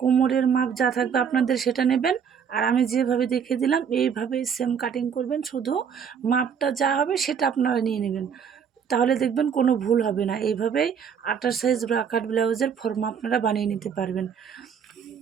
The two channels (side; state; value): left; quieter; 7.2 dB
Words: মাপ যা থাকবে আপনাদের সেটা নেবেন, আর আমি যেভাবে দেখিয়ে দিলাম এইভাবেই সেম কাটিং করবেন। শুধু মাপটা যা হবে সেটা আপনারা নিয়ে নেবেন, তাহলে দেখবেন কোনো ভুল হবে না। এইভাবেই 28 সাইজ ব্রাকাট ব্লাউজের ফর্মা আপনারা বানিয়ে নিতে পারবেন।